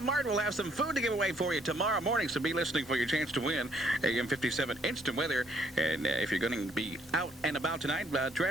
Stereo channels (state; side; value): normal; both; correlation 0.67